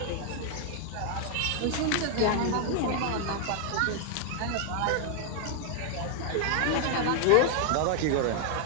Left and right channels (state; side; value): different; both; correlation 0.00